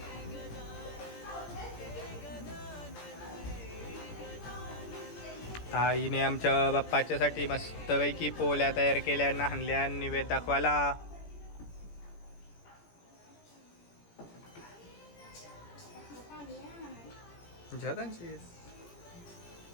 आईने आमच्या बाप्पाच्यासाठी मस्तपैकी पोल्या तयार केल्या नाहनल्या निवेद दाखवायला. जगांची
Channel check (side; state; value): right; late; 17 ms